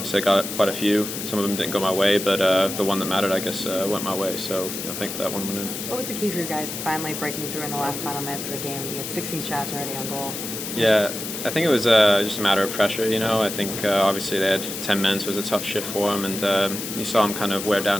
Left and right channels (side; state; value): left; noise; hiss, 6 dB below the sound